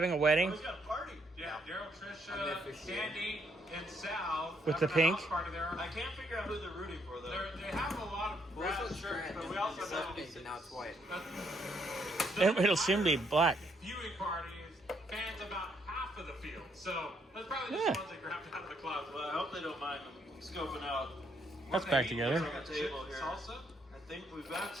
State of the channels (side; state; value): both; normal; correlation 0.72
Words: a wedding? He's got a party. Yeah, Daryl, Trisha, Sandy, and Sal. With the pink? Party there. I can't figure out who they're rooting for though. They have a lot of Well, brass this shirts, shirt but we also know pink and now it's white. It'll soon be black. Viewing party is fans about half of the field, so that's probably just the ones that grabbed out of the clouds. Well, I hope they don't mind scoping out. That's back together. On the table here. Salsa? I think we've got